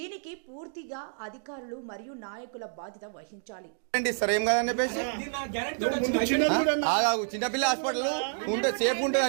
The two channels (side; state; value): left; silent; digital silence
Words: పూర్తిగా అధికారులు మరియు నాయకుల బాధ్యత వహించాలి. చిన్నపిల్ల హాస్పిటల్ ఉంటే సేఫ్ ఉంటుంది